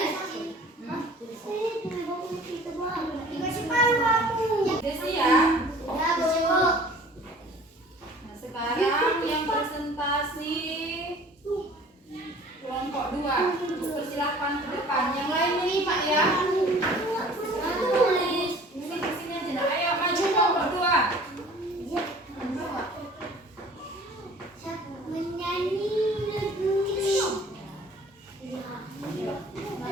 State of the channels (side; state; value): both; normal; correlation 0.48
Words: Udah siap? Nah, sekarang yang presentasi